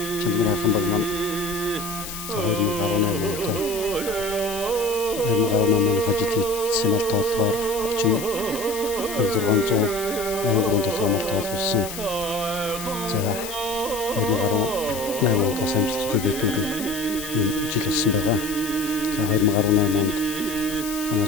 Чандман хайрхан баг маань 2018 онд 2018 оны хажил хийсэн мал тоолгоор 30,683 толгой мал тоолсон. За 2018 онд бас амжилттай дэвтүүрийн ийм жил болсон байгаа. За 2018 онд манай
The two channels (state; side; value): noise; left; hiss, 9 dB below the sound